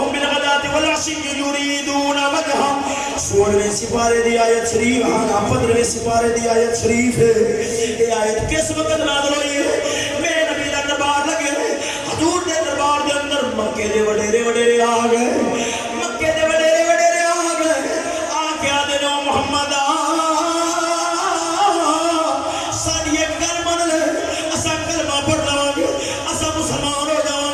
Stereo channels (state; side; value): identical; both; correlation 1.00